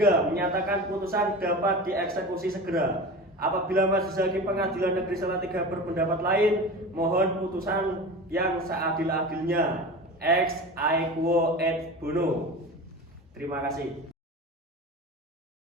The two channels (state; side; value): normal; both; correlation 0.32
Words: Menyatakan putusan dapat dieksekusi segera. Apabila Majelis Hakim Pengadilan Negeri Salatiga berpendapat lain, mohon putusan yang seadil-adilnya. Ex aequo et bono. Terima kasih.